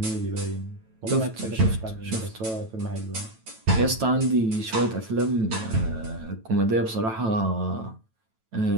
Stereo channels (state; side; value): late; left; 9.1 ms